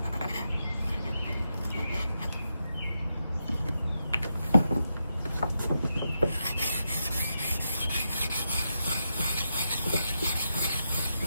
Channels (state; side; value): inverted; both; correlation -0.86